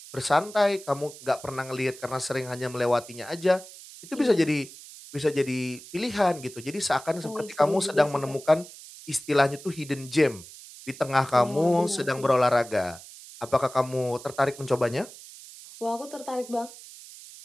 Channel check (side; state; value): right; noise; hiss, 17 dB below the sound